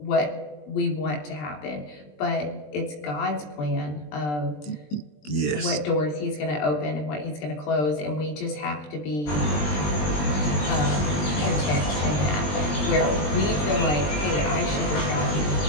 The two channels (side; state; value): right; late; 20 ms